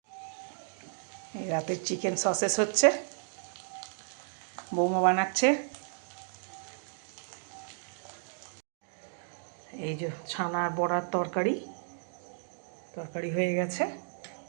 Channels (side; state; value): left; silent; digital silence